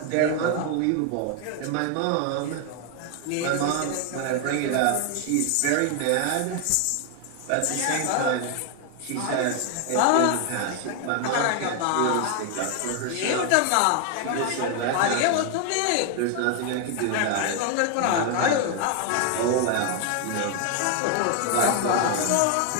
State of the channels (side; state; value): both; different; correlation 0.00